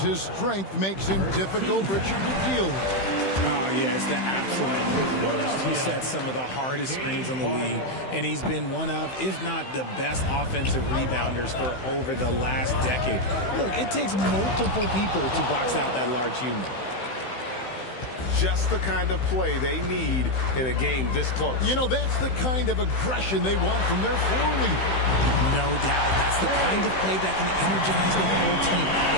his strength makes him difficult, Richard, to deal with. Oh, yeah, it's the absolute worst. He set some of the hardest screens in the league, and he's been one of, if not the best offensive rebounders for over the last decade. Look, it takes multiple people to box out that large human. Just the kind of play they need in a game this close. You know, that's the kind of aggression they want from their floor leader. No doubt. That's the kind of play that can energize the whole team,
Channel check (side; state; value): right; late; 16 ms